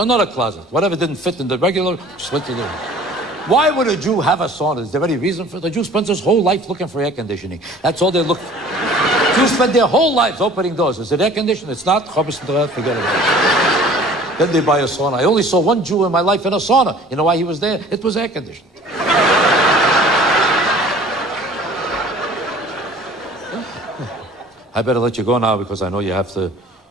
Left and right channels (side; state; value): both; normal; correlation 0.48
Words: closet. Whatever didn't fit in the regular, just went to the... Why would a Jew have a sauna? Is there any reason for it? The Jew spends his whole life looking for air conditioning. That's all they look for. Jews spend their whole lives opening doors. Is it air conditioning? It's not. Forget it. Then they buy a sauna. I only saw one Jew in my life in a sauna. You know why he was there? It was air conditioned. I better let you go now because I know you have to